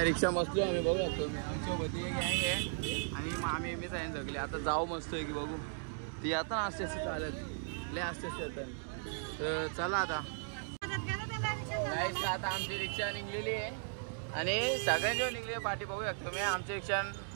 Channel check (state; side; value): silent; left; digital silence